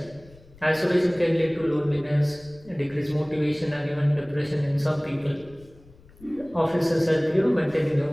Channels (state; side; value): noise; left; rumble, 25 dB below the sound